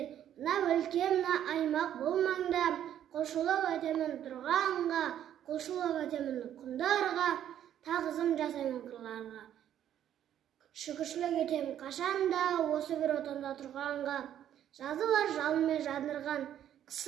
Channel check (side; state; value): left; quieter; 10.6 dB